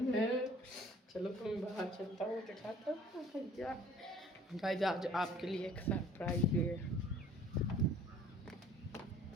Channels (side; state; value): both; normal; correlation 0.53